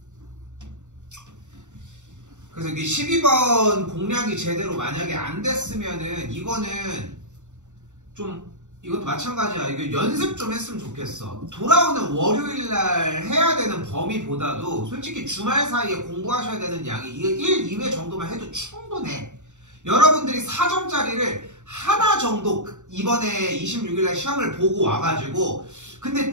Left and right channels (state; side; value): late; left; 0.84 ms